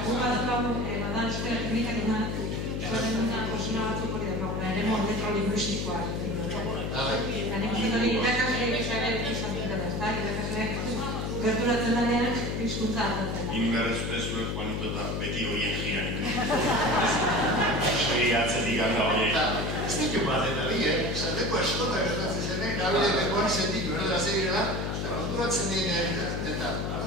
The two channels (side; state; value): left; noise; hum, 2 dB below the sound